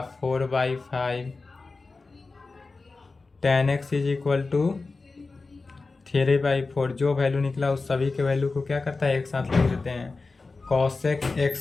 4/5 tan x is equal to 3/4। जो वैल्यू निकला उस सभी के वैल्यू को क्या करता है, एक साथ लिख देते हैं। cosec x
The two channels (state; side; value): quieter; right; 3.8 dB